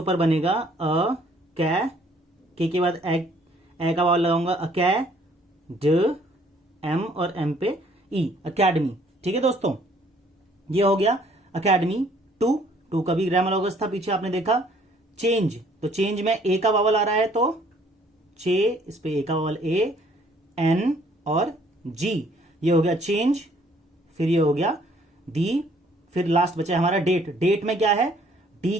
बनेगा, अ के बाद ए का वावल लगाऊंगा, अकै, ड, एम और एम पे ई, अकेडमी। ठीक है दोस्तों, ये हो गया अकेडमी। टू का भी ग्रामर लॉगस था पीछे आपने देखा। चेंज, तो चेंज में ए का वावल आ रहा है तो चे, इस पे ए का वावल, ए, एन और जी, ये हो गया चेंज। फिर ये हो गया दी, फिर लास्ट बचा हमारा डेट। डेट में क्या है, डी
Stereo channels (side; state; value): both; normal; correlation 0.61